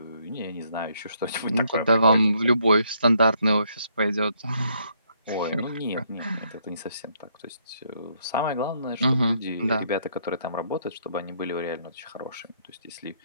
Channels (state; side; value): inverted; both; correlation -0.71